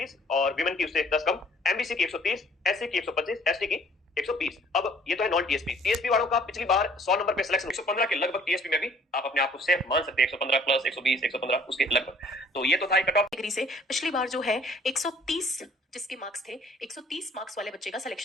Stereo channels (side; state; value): both; normal; correlation 0.57